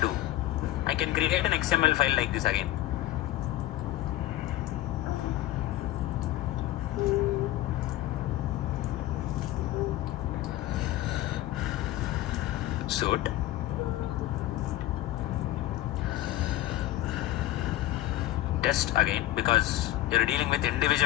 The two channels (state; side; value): quieter; right; 15.4 dB